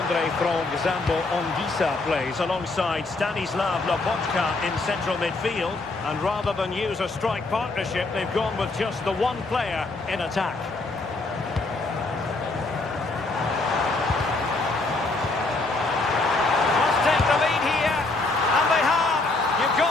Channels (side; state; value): right; quieter; 3.3 dB